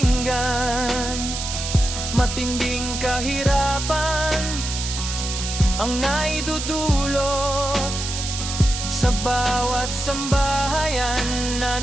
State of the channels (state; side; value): noise; right; hiss, 5 dB below the sound